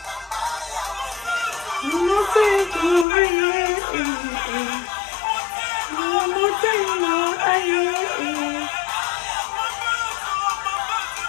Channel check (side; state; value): right; drops out; at 3.1 s